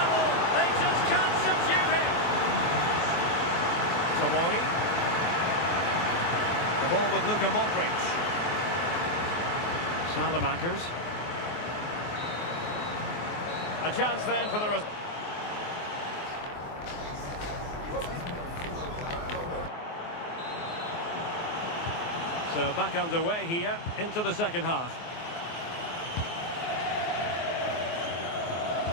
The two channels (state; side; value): late; right; 24 ms